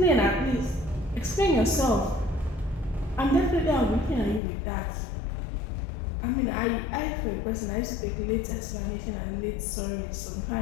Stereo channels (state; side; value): drops out; right; at 4.4 s